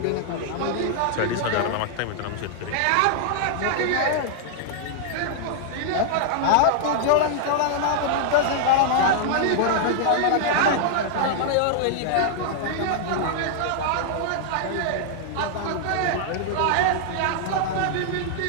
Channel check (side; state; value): both; different; correlation -0.01